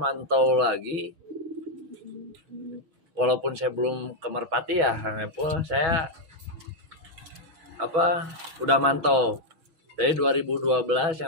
lagi. Walaupun saya belum ke merpati ya, Kang Epul, saya udah mantau. Dari 2012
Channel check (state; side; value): late; left; 6.2 ms